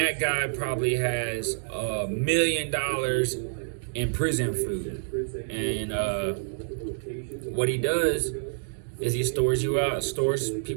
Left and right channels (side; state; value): left; silent; digital silence